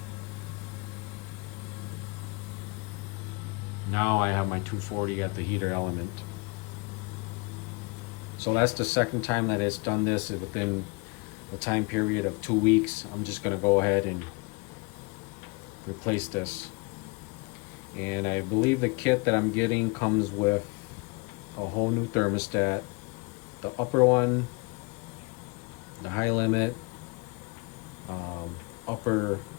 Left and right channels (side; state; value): right; quieter; 29.2 dB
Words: now I have my 240 at the heater element. So that's the second time that it's done this within the time period of 2 weeks. I'm just gonna go ahead and replace this. And I believe the kit that I'm getting comes with a whole new thermostat, the upper one, the high limit, upper